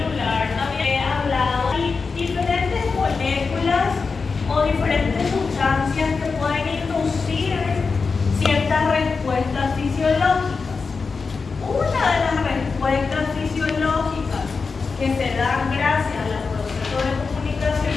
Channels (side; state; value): right; quieter; 4.7 dB